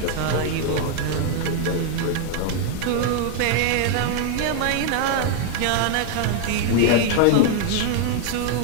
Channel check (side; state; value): both; different; correlation 0.00